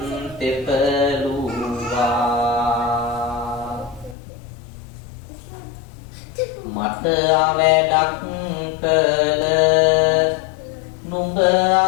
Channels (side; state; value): right; drops out; at 4.2 s